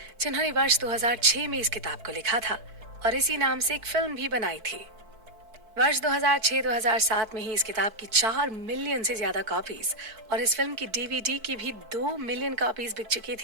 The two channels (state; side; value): late; left; 4.5 ms